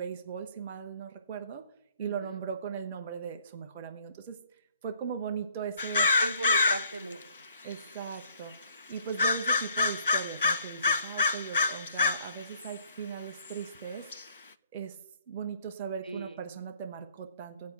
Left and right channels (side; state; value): both; inverted; correlation -0.63